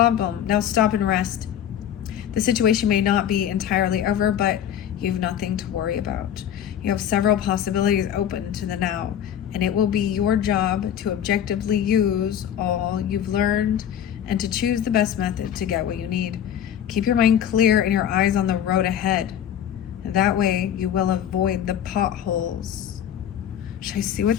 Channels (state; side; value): quieter; right; 9.9 dB